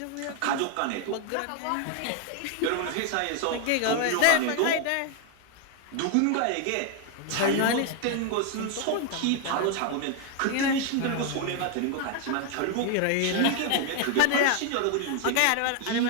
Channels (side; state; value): both; different; correlation 0.01